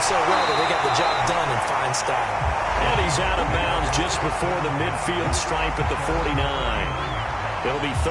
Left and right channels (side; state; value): both; identical; correlation 1.00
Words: so well that they got the job done in fine style. And he's out of bounds just before the midfield stripe at the 49. It'll be